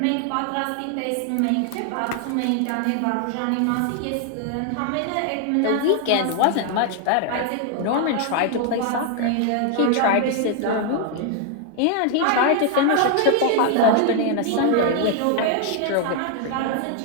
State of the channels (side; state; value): both; different; correlation 0.00